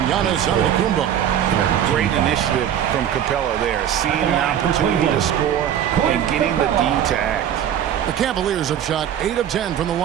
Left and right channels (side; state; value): left; quieter; 10.0 dB